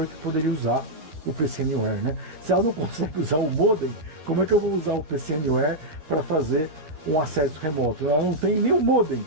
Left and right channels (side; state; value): left; late; 12 ms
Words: que poderia usar o PC Anywhere, né? Se ela não consegue usar o modem, como é que eu vou usar o PC Anywhere para fazer um acesso remoto? Ela não tem nenhum modem.